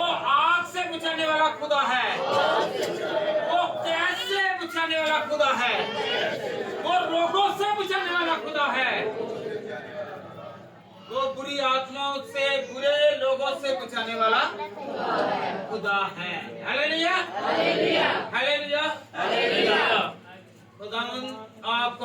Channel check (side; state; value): both; identical; correlation 1.00